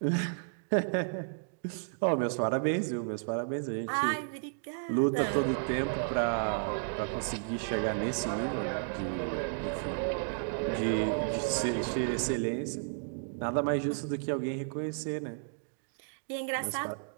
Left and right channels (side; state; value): left; silent; digital silence